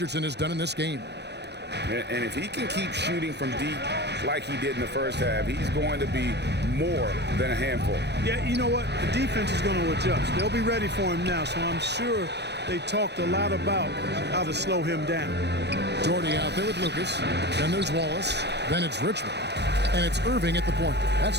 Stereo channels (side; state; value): left; late; 0.49 ms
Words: has done in this game. And if he can keep shooting from deep like he did in the first half, he's going to be more than a handful. Yeah, you know what? The defense is going to adjust. They'll be ready for him now, so I'm sure they talked a lot about how to slow him down. Doherty out there with Lucas. Then there's Wallace. Then it's Richmond. And it's Irving at the point.